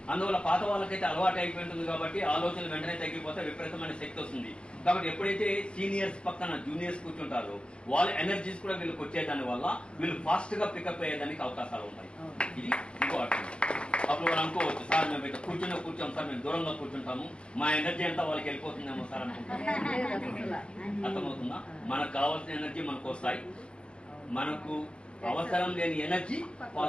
అందువల్ల పాత వాళ్ళకైతే అలవాటు అయిపోయింటుంది కాబట్టి ఆలోచనలు వెంటనే తగ్గిపోతే విపరీతమైన శక్తి వస్తుంది. కాబట్టి ఎప్పుడైతే సీనియర్స్ పక్కన జూనియర్స్ కూర్చుంటారో వాళ్ళ ఎనర్జీస్ కూడా వీళ్ళకి వచ్చేదాని వల్ల వీళ్ళు ఫాస్ట్ గా పికప్ అయ్యేదానికి అవకాశాలు ఉంటాయి. ఇది ఇంకో అర్థం. అప్పుడు వాళ్ళు అనుకోవచ్చు, సార్ మేము ఇక్కడ కూర్చోం సార్, మేము దూరంగా కూర్చుంటాము, మా ఎనర్జీ అంతా వాళ్ళకి వెళ్ళిపోతుందేమో సార్ అనుకుంటాం. అర్థమవుతుందా? మనకు కావాల్సిన ఎనర్జీ మనకు వస్తాయి, మనకు అవసరం లేని ఎనర్జీ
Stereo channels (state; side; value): late; right; 0.056 ms